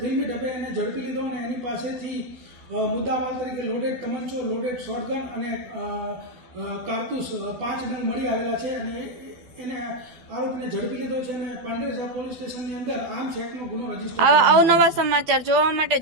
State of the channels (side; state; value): left; late; 12 ms